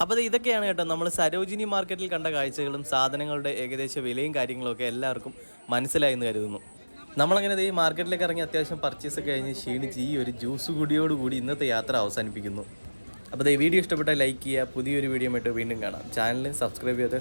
അപ്പോൾ ഇതൊക്കെയാണ് കേട്ടോ നമ്മൾ സരോജിനി മാർക്കറ്റിൽ കണ്ട കാഴ്ചകളും സാധനങ്ങളുടെ ഏകദേശ വിലയും കാര്യങ്ങളൊക്കെ എല്ലാവർക്കും മനസ്സിലായി എന്ന് കരുതുന്നു. നമ്മളങ്ങനെ ഈ മാർക്കറ്റിലേക്ക് ഇറങ്ങി അത്യാവശ്യം പർച്ചേസ് ഒക്കെ കഴിഞ്ഞ് ക്ഷീണിച്ച് ഈ ഒരു ജ്യൂസ് കൂടിയോടുകൂടി ഇന്നത്തെ യാത്ര അവസാനിപ്പിക്കുന്നു. അപ്പോൾ ഈ വീഡിയോ ഇഷ്ടപ്പെട്ടാൽ ലൈക്ക് ചെയ്യുക. പുതിയൊരു വീഡിയോ ആയിട്ട് വീണ്ടും കാണാം. ചാനൽ സബ്സ്ക്രൈബ് ചെയ്യാതെ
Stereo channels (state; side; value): inverted; both; correlation -1.00